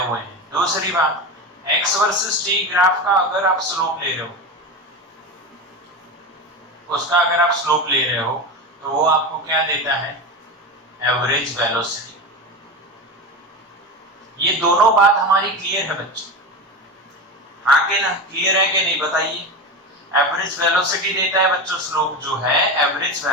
हैं। दूसरी बात, एक्स वर्सेस टी ग्राफ का अगर आप स्लोप ले रहे हो, उसका अगर आप स्लोप ले रहे हो तो वो आपको क्या देता है, एवरेज वेलोसिटी। ये दोनों बात हमारी क्लियर है बच्चों? हाँ के ना, क्लियर है कि नहीं बताइए। एवरेज वेलोसिटी देता है बच्चों स्लोप जो है, एवरेज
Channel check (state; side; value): normal; both; correlation 0.22